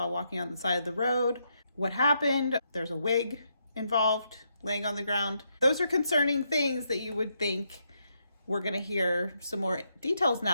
walking on the side of the road? What happened? There's a wig involved laying on the ground. Those are concerning things that you would think we're going to hear some more details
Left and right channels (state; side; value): inverted; both; correlation -0.79